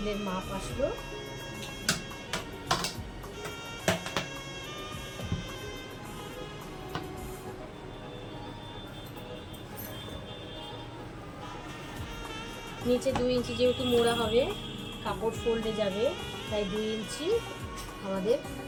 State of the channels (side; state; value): both; identical; correlation 1.00